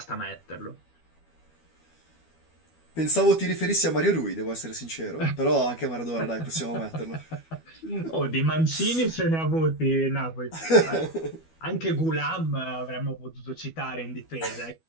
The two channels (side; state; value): right; late; 12 ms